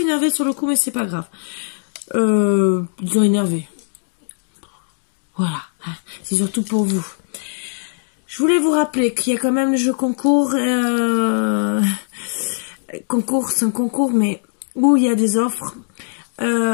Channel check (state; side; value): silent; right; digital silence